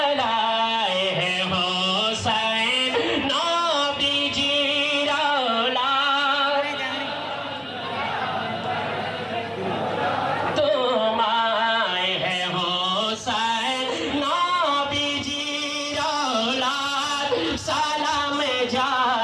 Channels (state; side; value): identical; both; correlation 1.00